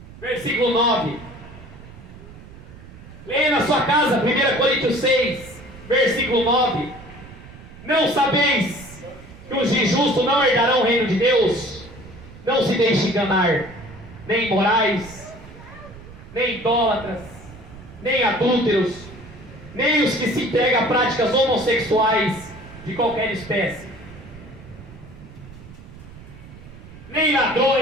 versículo 9. Leia na sua casa, 1 Coríntios 6, versículo 9. Não sabeis que os injustos não herdarão o reino de Deus? Não se deixe enganar, nem imorais, nem idólatras, nem adúlteros, nem os que se entregam a práticas homossexuais de qualquer espécie, nem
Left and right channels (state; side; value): noise; right; rumble, 18 dB below the sound